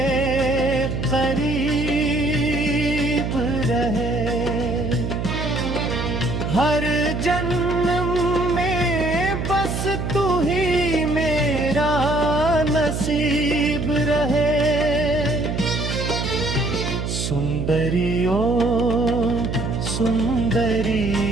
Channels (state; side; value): noise; right; hum, 3 dB below the sound